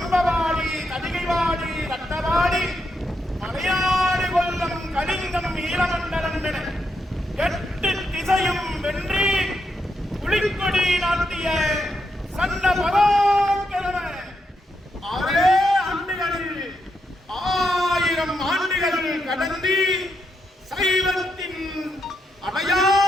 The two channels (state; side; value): normal; both; correlation 0.82